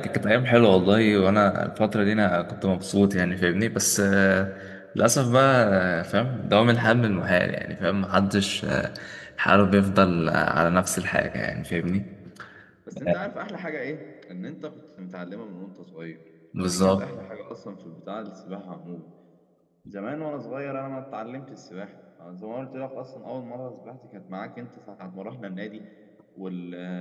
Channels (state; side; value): identical; both; correlation 1.00